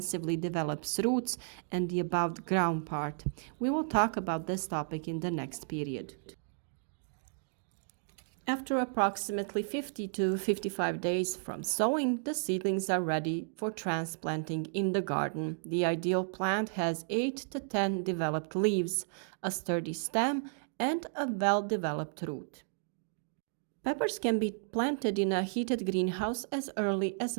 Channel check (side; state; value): left; silent; digital silence